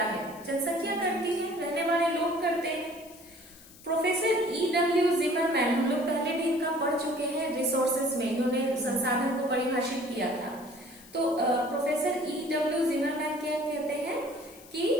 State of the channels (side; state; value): left; noise; hiss, 22 dB below the sound